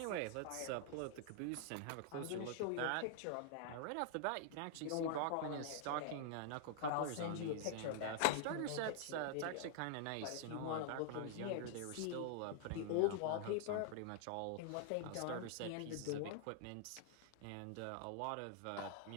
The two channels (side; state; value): both; different; correlation -0.01